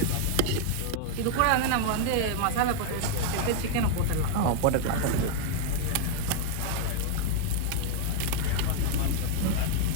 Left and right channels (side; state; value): both; different; correlation 0.00